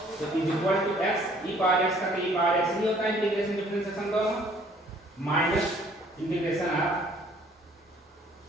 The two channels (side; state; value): both; normal; correlation 0.59